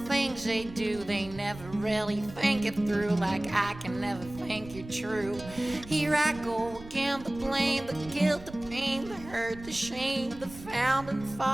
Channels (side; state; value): right; noise; rumble, 16 dB below the sound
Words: things they do. They never really think it through, like I can never think you're true. Here I go again, the blame, the guilt, the pain, the hurt, the shame, the founding